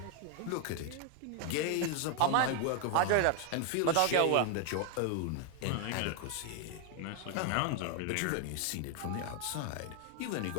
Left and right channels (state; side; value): different; both; correlation 0.00